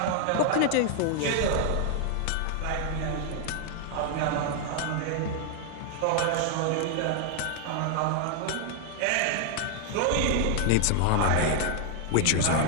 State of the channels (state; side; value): different; both; correlation 0.00